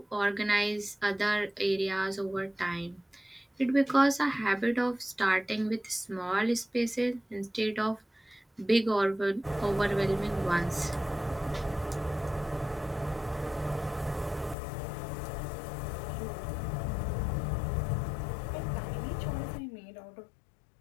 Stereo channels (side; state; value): right; drops out; at 14.6 s